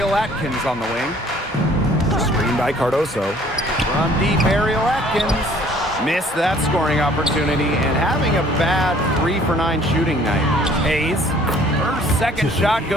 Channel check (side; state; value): both; normal; correlation 0.56